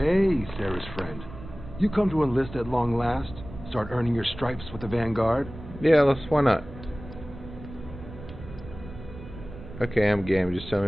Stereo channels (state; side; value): noise; right; rumble, 14 dB below the sound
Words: Sarah's friend. You come to enlist at long last? Start earning your stripes with the Vanguard? Yeah, why not? Okay, I'm game. Just tell